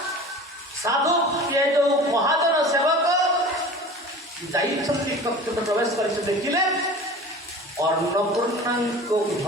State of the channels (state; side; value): normal; both; correlation 0.38